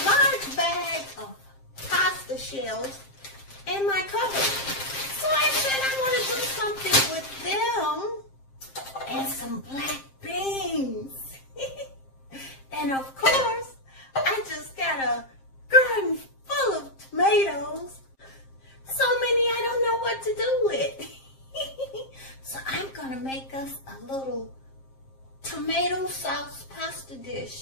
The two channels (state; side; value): late; right; 7.5 ms